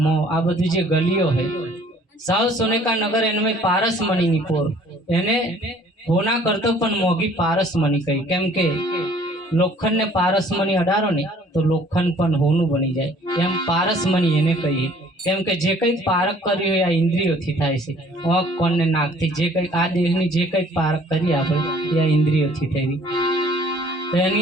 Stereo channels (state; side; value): normal; both; correlation 0.56